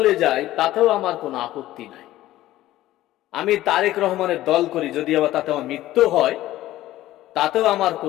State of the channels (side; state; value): right; quieter; 15.1 dB